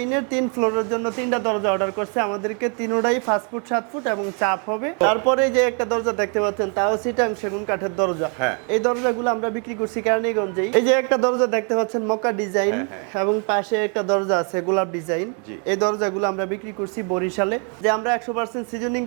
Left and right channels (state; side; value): quieter; left; 39.1 dB